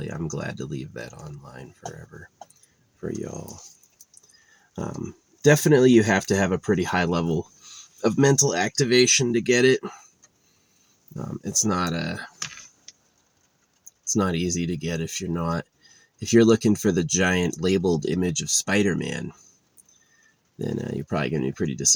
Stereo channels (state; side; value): identical; both; correlation 1.00